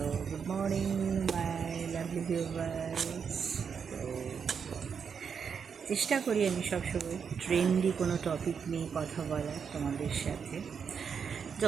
good morning, my lovely viewers. তো চেষ্টা করি আমি সবসময় ট্রেন্ডি কোনো টপিক নিয়ে কথা বলার তোমাদের সাথে,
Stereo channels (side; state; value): left; quieter; 6.6 dB